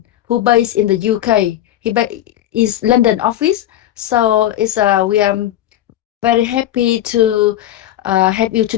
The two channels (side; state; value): right; quieter; 12.9 dB